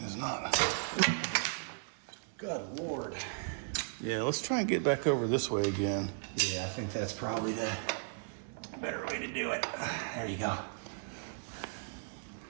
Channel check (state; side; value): silent; left; digital silence